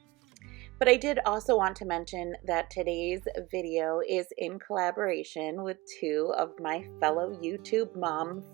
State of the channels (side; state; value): left; quieter; 21.6 dB